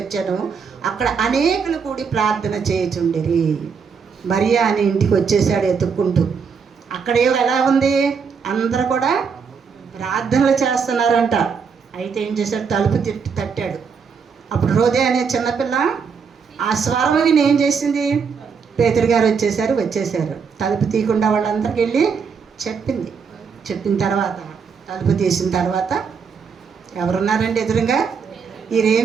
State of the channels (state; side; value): quieter; left; 6.0 dB